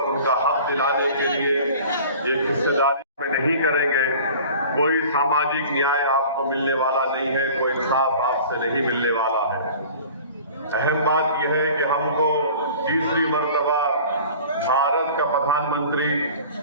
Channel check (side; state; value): both; inverted; correlation -0.43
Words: उनका हक दिलाने के लिए एक हिस्सेदारी में नहीं करेंगे, कोई सामाजिक न्याय आपको मिलने वाला नहीं है, कोई इंसाफ आपसे नहीं मिलने वाला है। अहम बात यह है कि हमको तीसरी मर्तबा भारत का प्रधानमंत्री